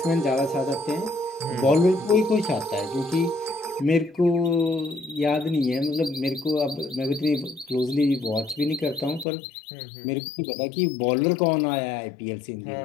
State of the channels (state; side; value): drops out; right; at 9.2 s